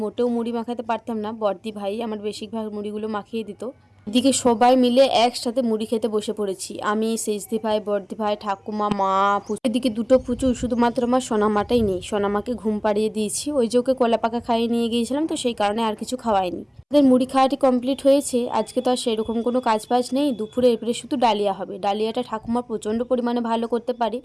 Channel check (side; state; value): both; identical; correlation 1.00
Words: মোটেও মুড়ি মাখাতে পারতাম না, বড়দি ভাই আমার বেশিরভাগ মুড়িগুলো মাখিয়ে দিত। এদিকে সবাই মিলে একসাথে মুড়ি খেতে বসে পড়েছি, আমি সেজদি ভাই বড়দি ভাই ঠাকুমা মা পুচু। এদিকে দুটো পুচু, শুধুমাত্র আমার সোনামাটাই নেই। সোনামাকে ঘুম পাড়িয়ে দিয়েছি, ওই যে ওকে কলা পাকা খাইয়ে নিয়ে গিয়েছিলাম, তো সেই কারণে আর কিছু খাওয়াইনি। আমাদের মুড়ি খাওয়াটি কমপ্লিট হয়েছে। আজকে তো আর সেরকম কোনো কাজ বাজ নেই, দুপুরে এবারে শুধু ডালিয়া হবে। ডালিয়াটা ঠাকুমা প্রচণ্ড পরিমাণে ভালো করতে পারে,